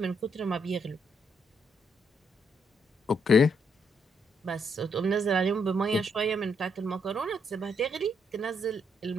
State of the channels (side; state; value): both; normal; correlation 0.75